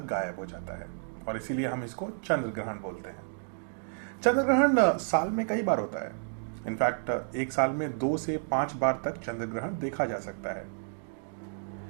गायब हो जाता है और इसीलिए हम इसको चंद्र ग्रहण बोलते हैं। चंद्र ग्रहण साल में कई बार होता है। इनफैक्ट एक साल में 2 से 5 बार तक चंद्र ग्रहण देखा जा सकता है।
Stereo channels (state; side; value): silent; left; digital silence